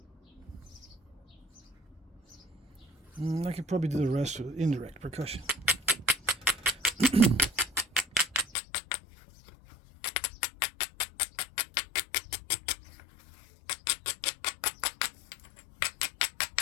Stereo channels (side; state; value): right; drops out; at 8.5 s